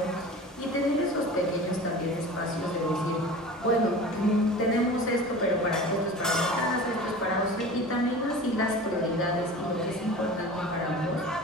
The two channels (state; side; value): normal; both; correlation 0.37